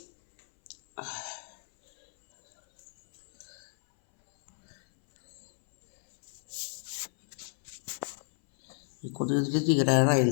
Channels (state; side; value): silent; right; 57 dB below the other